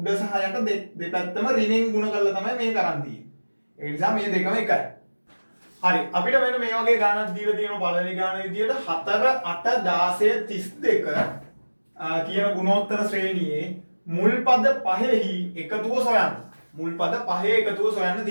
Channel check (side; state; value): both; inverted; correlation -1.00